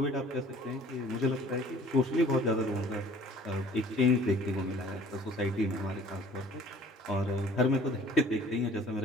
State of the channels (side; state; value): both; normal; correlation 0.51